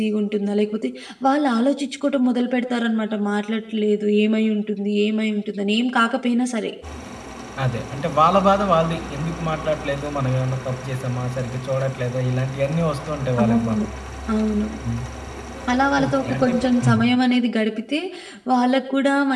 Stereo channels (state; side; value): identical; both; correlation 1.00